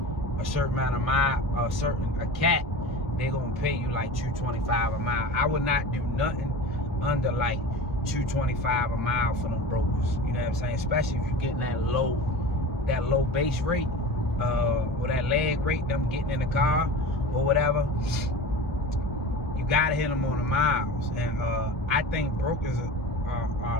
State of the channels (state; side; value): normal; both; correlation 0.33